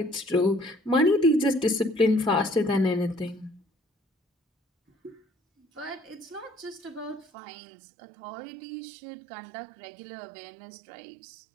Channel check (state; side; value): drops out; left; at 7.2 s